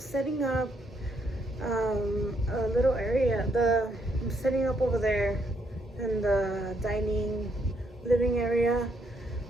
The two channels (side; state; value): both; normal; correlation 0.74